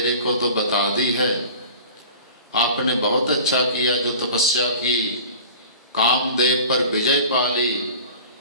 को तो बता दी है, आपने बहुत अच्छा किया जो तपस्या की, कामदेव पर विजय पा ली,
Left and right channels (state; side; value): inverted; both; correlation -0.40